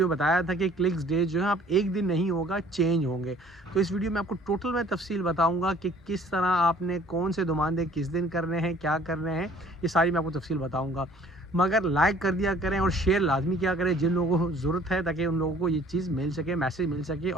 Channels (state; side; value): normal; both; correlation 0.54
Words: बताया था कि क्लिक्स डे जो है आप एक दिन नहीं होगा, चेंज होंगे। तो इस वीडियो में आपको टोटल मैं तफसील बताऊँगा कि किस तरह आपने कौन से दुमानदे किस दिन करने हैं, क्या करने हैं, ये सारी मैं आपको तफसील बताऊँगा। मगर लाइक कर दिया करें और शेयर लाज़मी किया करें जिन लोगों को ज़रूरत है, ताकि उन लोगों को ये चीज़ मिल सके, मैसेज मिल सके